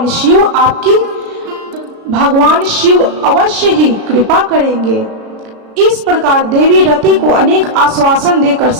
भगवान शिव अवश्य ही कृपा करेंगे। इस प्रकार देवी रति को अनेक आश्वासन देकर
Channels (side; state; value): left; late; 36 ms